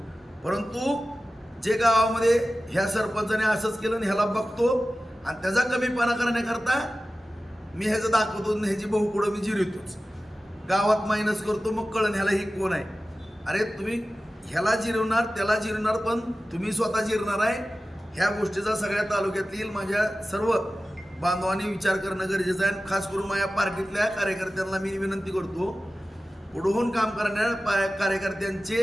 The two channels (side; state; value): both; normal; correlation 0.95